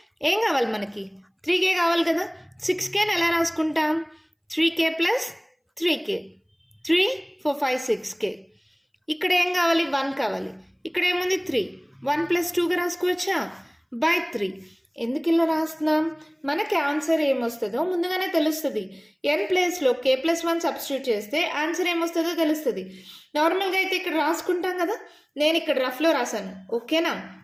ఏం కావాలి మనకి 3k కావాలి కదా 6kని ఎలా రాసుకుంటాం 3k ప్లస్ 3k 3 4 5 6k. ఇక్కడ ఏం కావాలి 1 కావాలి ఇక్కడ ఏముంది 3 1 ప్లస్ 2గా రాసుకోవచ్చా బై 3. ఎందుకు ఇలా రాస్తున్నాం మనకి ఆన్సర్ ఏమొస్తుందో ముందుగానే తెలుస్తుంది. n ప్లేస్లో k ప్లస్ 1 సబ్స్టిట్యూట్ చేస్తే ఆన్సర్ ఏమొస్తుందో తెలుస్తుంది. నార్మల్గా అయితే ఇక్కడ రాసుకుంటాం కదా నేను ఇక్కడ రఫ్లో రాశాను ఓకేనా.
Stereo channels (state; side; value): identical; both; correlation 1.00